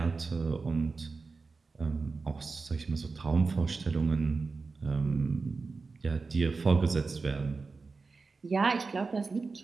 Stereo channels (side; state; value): left; quieter; 4.2 dB